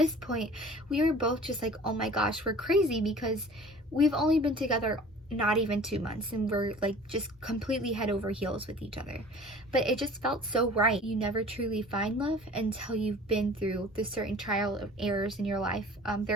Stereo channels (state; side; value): normal; both; correlation 0.45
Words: point, we were both just like, oh my gosh, we're crazy, because we've only been together not even 2 months, and we're like just completely head over heels with each other. But it just felt so right. You never truly find love until you've been through the certain trial of errors in your life.